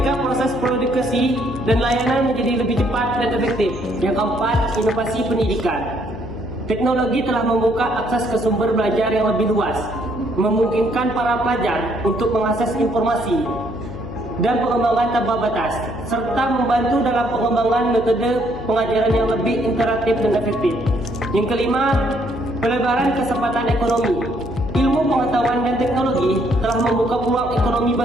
proses produksi dan layanan menjadi lebih cepat dan efektif. Yang keempat, inovasi pendidikan. Teknologi telah membuka akses ke sumber belajar yang lebih luas, memungkinkan para pelajar untuk mengakses informasi dan pengembangan tanpa batas, serta membantu dalam pengembangan metode pengajaran yang lebih interaktif dan efektif. Yang kelima, pelebaran kesempatan ekonomi. Ilmu pengetahuan dan teknologi telah membuka peluang ekonomi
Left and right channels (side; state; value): left; noise; hum, 11 dB below the sound